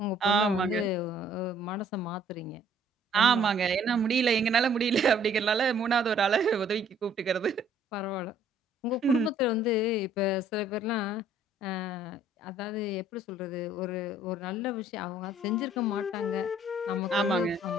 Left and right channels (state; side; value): normal; both; correlation 0.59